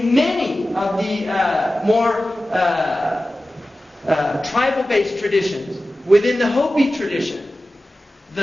many of the more tribal-based traditions, within the Hopi tradition,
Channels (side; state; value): both; normal; correlation 0.95